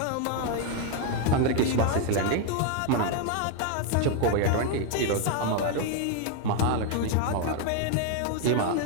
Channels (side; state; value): both; different; correlation 0.01